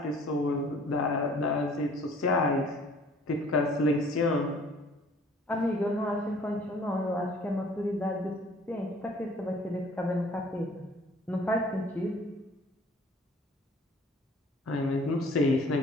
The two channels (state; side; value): normal; both; correlation 0.53